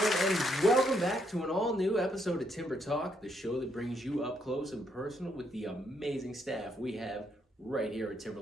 To an all-new episode of Timber Talk, the show that brings you up close and personal with the amazing staff we have right here at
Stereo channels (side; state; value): both; normal; correlation 0.74